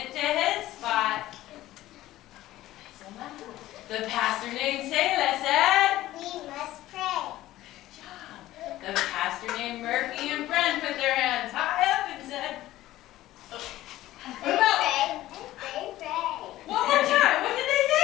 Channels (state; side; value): quieter; right; 15.4 dB